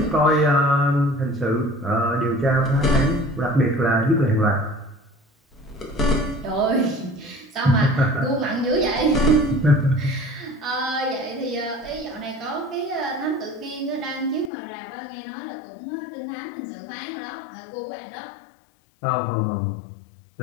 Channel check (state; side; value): drops out; right; at 14.5 s